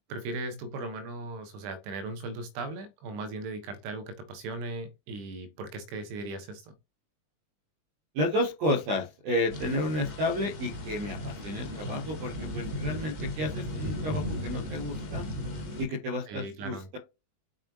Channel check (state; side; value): late; left; 20 ms